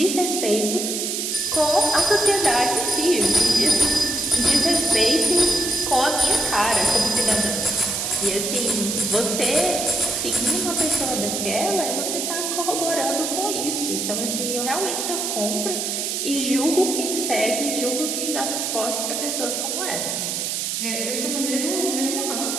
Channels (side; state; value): right; noise; hiss, 2 dB below the sound